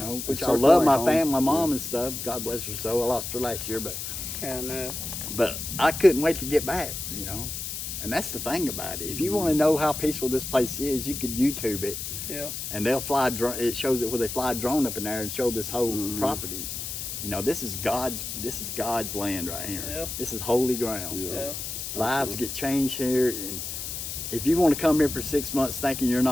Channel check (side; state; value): left; noise; hiss, 6 dB below the sound